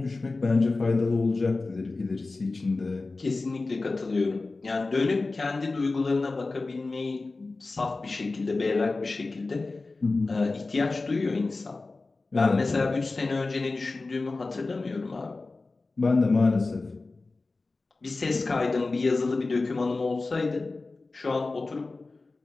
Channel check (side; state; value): right; quieter; 3.5 dB